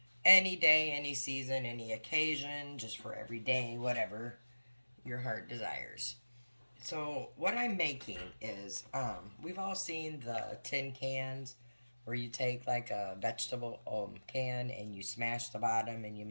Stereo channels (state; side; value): inverted; both; correlation -1.00